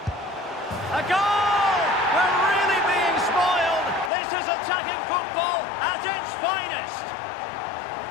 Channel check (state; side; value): drops out; right; at 4.1 s